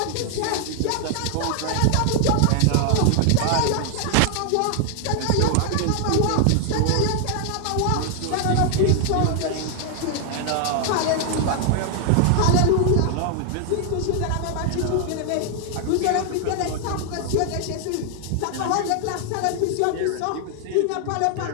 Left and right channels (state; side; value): different; both; correlation 0.00